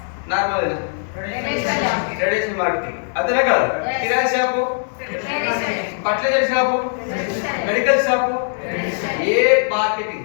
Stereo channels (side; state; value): right; silent; 66 dB below the other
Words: normal traditional marketing అంతేనా కదా? Kirana shop, fertilizer shop, medical shop, ఏ మార్కెటింగ్